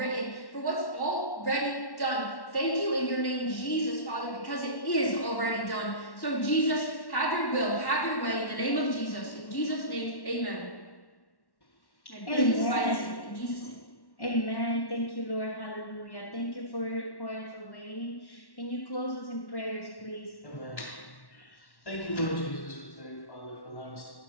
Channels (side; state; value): right; late; 1.1 ms